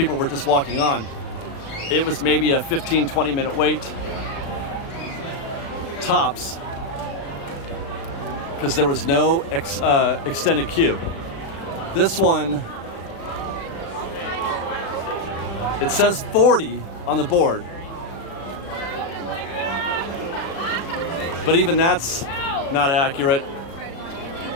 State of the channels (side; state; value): right; late; 36 ms